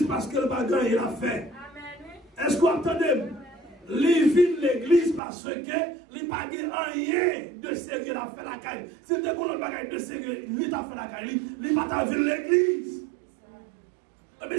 parce que le bagage il a fait. Est-ce que vous entendez? Il vient l'église parce que il n'a pas rien de sérieux à faire la caille. Si tu as un bagage de sérieux, il a fait la caille, il n'a pas vu l'église. Mais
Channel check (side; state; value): left; drops out; at 5.2 s